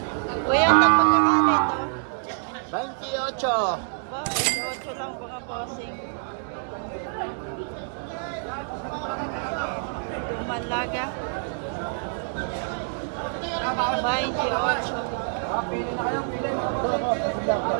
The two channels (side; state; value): left; silent; 61 dB below the other